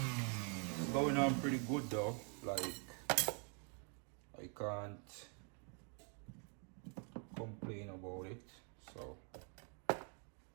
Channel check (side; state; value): left; quieter; 39.8 dB